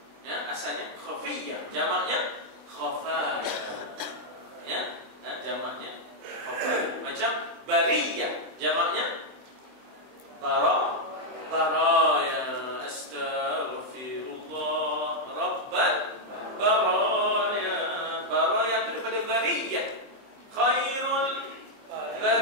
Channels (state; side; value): late; left; 23 ms